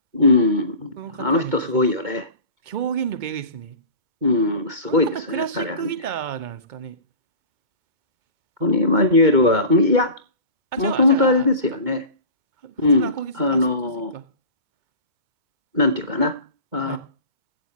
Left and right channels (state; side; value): late; left; 2.2 ms